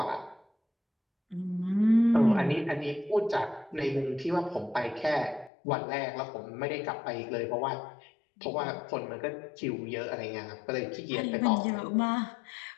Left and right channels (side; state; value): right; drops out; at 5.5 s